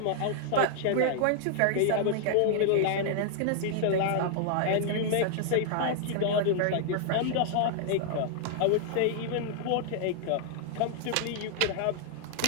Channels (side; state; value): both; different; correlation -0.01